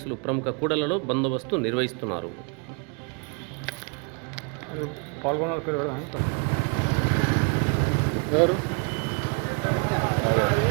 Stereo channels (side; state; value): left; quieter; 35.4 dB